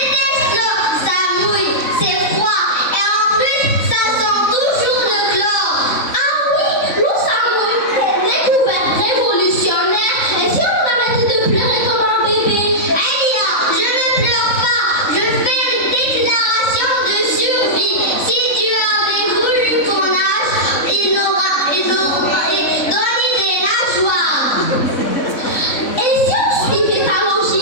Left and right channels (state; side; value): late; right; 3.6 ms